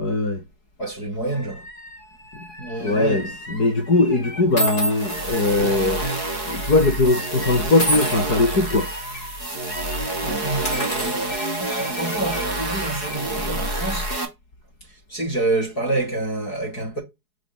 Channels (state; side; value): late; right; 4.7 ms